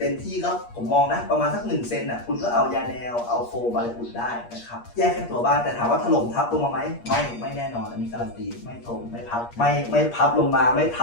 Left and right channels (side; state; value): right; late; 8.5 ms